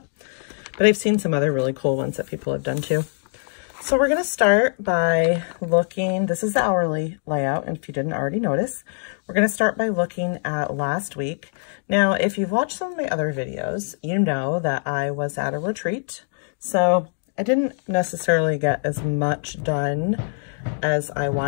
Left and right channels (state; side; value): silent; right; digital silence